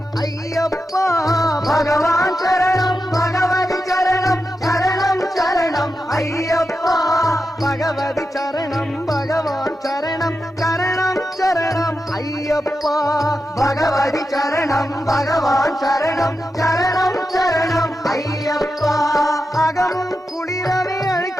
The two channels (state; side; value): normal; both; correlation 0.89